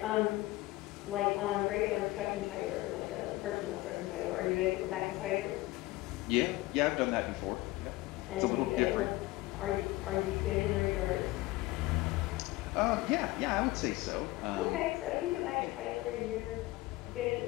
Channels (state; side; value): quieter; right; 19.2 dB